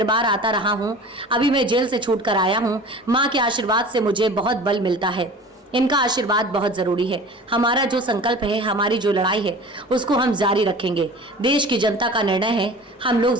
आता रहा हूं। अभी मैं जेल से छूटकर आया हूं। मां के आशीर्वाद से मुझे बहुत बल मिलता है। इनका आशीर्वाद बहुत जरूरी है। हमारा जो संकल्प है, हमारी जो लड़ाई है, उसको हम जारी रखेंगे। देश की जनता का निर्णय है। हम लोग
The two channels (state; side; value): normal; both; correlation 0.40